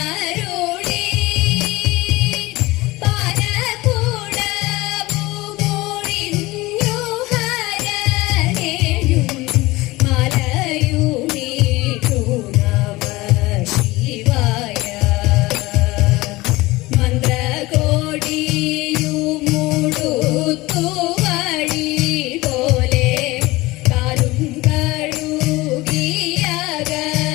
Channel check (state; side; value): quieter; right; 20.4 dB